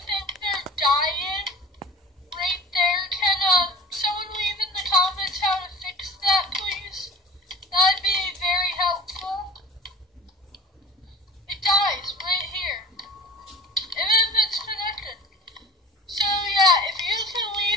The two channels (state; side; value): normal; both; correlation 0.36